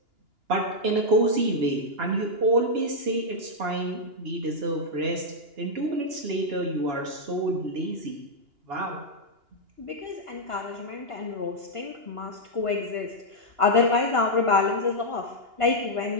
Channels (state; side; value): late; left; 2.9 ms